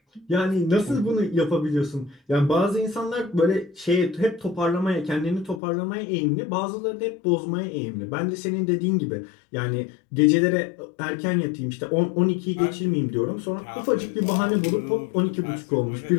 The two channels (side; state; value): right; drops out; at 5.6 s